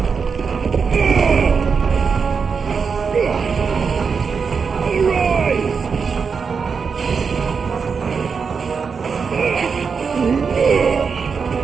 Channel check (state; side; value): quieter; left; 5.6 dB